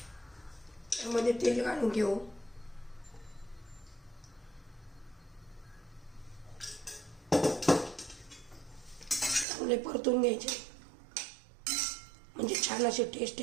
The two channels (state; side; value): drops out; left; at 9.5 s